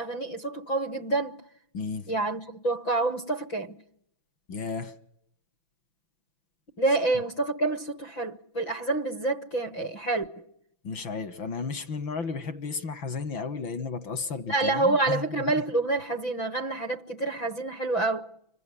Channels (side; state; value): right; late; 6.0 ms